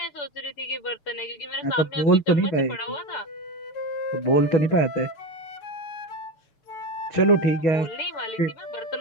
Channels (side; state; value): right; late; 6.8 ms